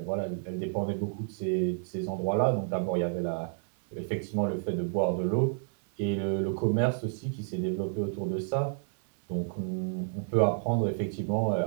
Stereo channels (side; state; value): left; silent; 58 dB below the other